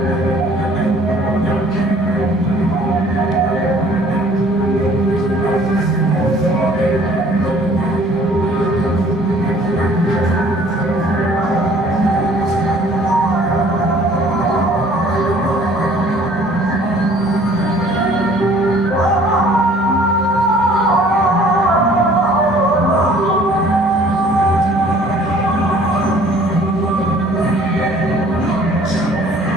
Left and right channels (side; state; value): left; noise; rumble, 27 dB below the sound